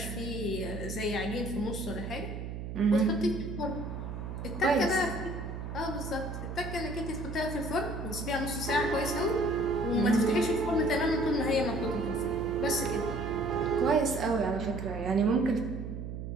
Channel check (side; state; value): right; noise; hum, 7 dB below the sound